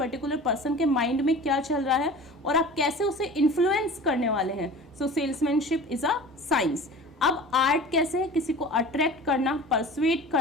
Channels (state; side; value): normal; both; correlation 0.39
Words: पर्सन के माइंड में क्या चल रहा है और आप कैसे उसे इन्फ्लुएंस करने वाले हैं। सो सेल्समैनशिप इज अ साइंस। अब आर्ट कैसे है, किसी को अट्रैक्ट करना, परसुएट